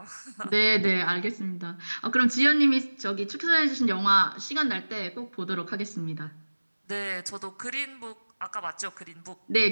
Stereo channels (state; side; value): inverted; both; correlation -1.00